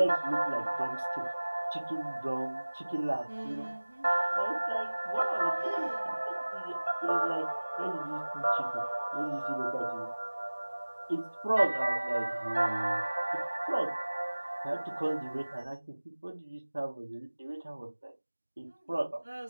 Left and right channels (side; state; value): both; inverted; correlation -1.00